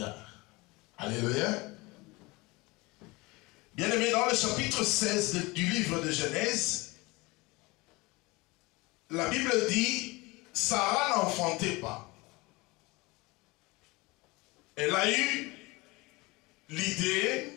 Alléluia. Bien-aimé, dans le chapitre 16 du livre de Genèse, la Bible dit, Sarah n'enfantait pas. Elle a eu l'idée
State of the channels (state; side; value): quieter; right; 23.7 dB